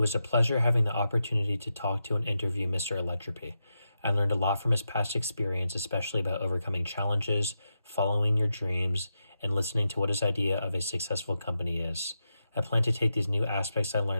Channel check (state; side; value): inverted; both; correlation -0.87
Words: was a pleasure having the opportunity to talk to and interview Mr. Electropy. I learned a lot from his past experience, especially about overcoming challenges, following your dreams, and listening to what his idea of a successful company is. I plan to take these new aspects I